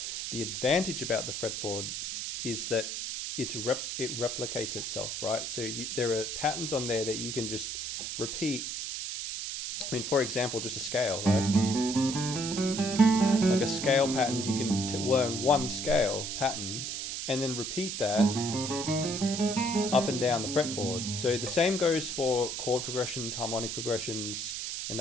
the advantage about the fretboard is that it replicates itself, right? So there are patterns on there that you can just repeat. I mean, for example, just a scale, right? Like a scale pattern, you can learn one scale pattern and then repeat that up and down the fretboard. So the same goes for chord progressions, harmonic progressions, and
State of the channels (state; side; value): noise; right; hiss, 4 dB below the sound